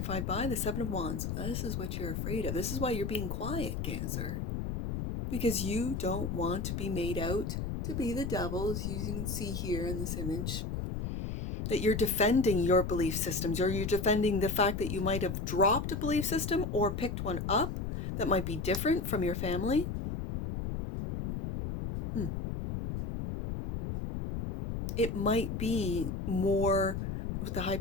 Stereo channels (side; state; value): left; noise; rumble, 3 dB below the sound